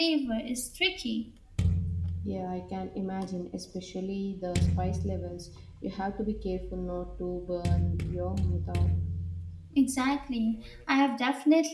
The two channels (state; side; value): identical; both; correlation 1.00